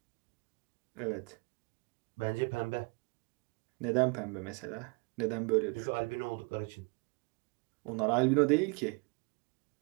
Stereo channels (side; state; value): left; quieter; 31.5 dB